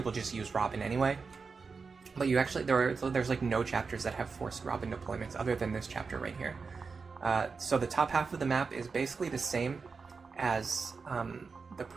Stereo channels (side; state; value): left; quieter; 4.8 dB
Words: just use Robin anyway. But you actually, there's like no chapters that have forced Robin deployments other than this chapter right here. So the top half of the map is basically the same as not